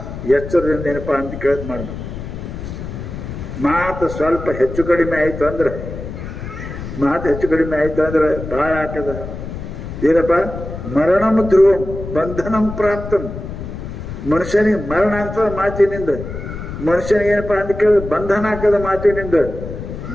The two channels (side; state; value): left; noise; rumble, 9 dB below the sound